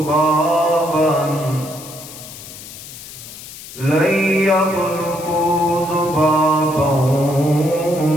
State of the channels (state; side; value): noise; left; hiss, 14 dB below the sound